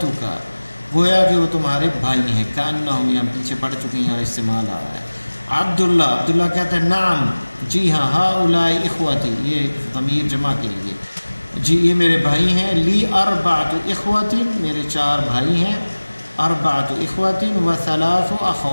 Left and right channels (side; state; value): both; inverted; correlation -1.00